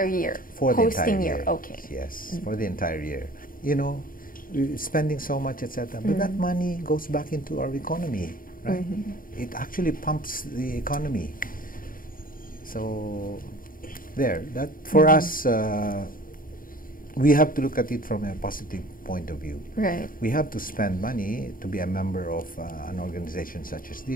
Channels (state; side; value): late; right; 0.41 ms